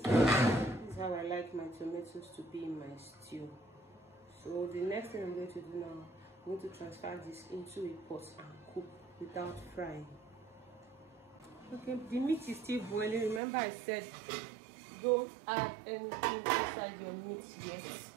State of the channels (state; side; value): drops out; left; at 13.4 s